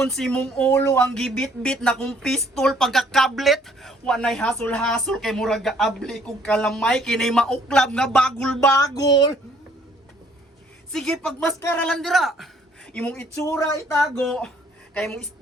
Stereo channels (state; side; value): normal; both; correlation 0.62